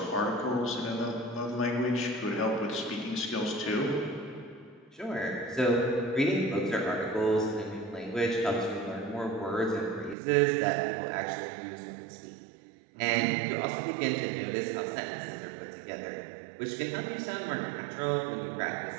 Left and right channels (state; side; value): drops out; left; at 10.2 s